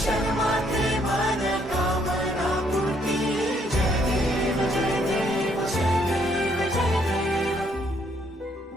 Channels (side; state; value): both; normal; correlation 0.69